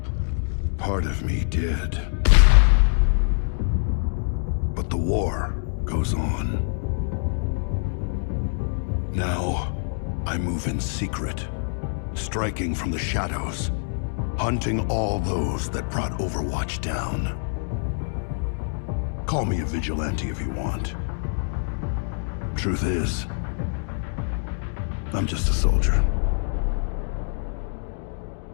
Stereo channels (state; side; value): silent; right; digital silence